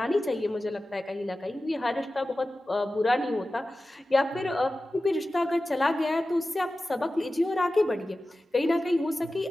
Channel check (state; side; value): normal; both; correlation 0.95